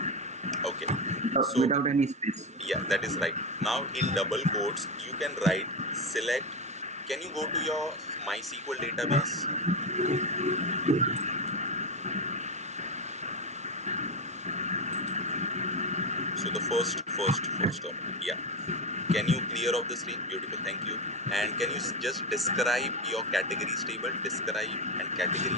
Okay. So Without any space. yeah, that is right. Now in double quotes, you can write select. Can you go to your MySQL database? So the first term. Yeah. Can you clear off the screen? Beautiful. Thank you. And can you just describe your categories table? Describe and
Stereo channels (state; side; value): normal; both; correlation 0.15